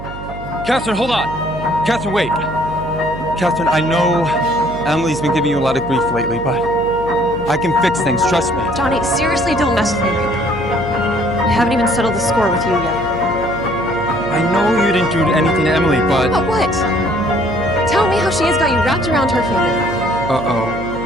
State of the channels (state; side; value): noise; right; hum, 11 dB below the sound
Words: Katherine, hold on. Katherine, wait. Katherine, I know Emilee's been giving you a lot of grief lately, but I can fix things, trust me. Johnny, seriously, don't mess with me right now. I haven't even settled the score with you yet. I know you didn't do anything to Emilee, but... But what? Tell me how she has got you wrapped around her finger.